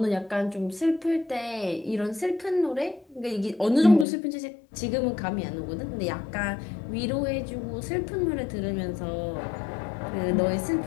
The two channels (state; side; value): drops out; right; at 4.0 s